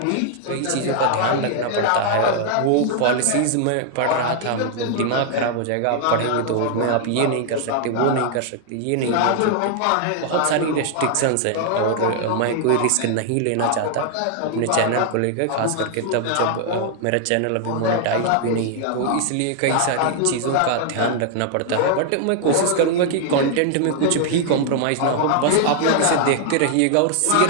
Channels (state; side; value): different; both; correlation 0.00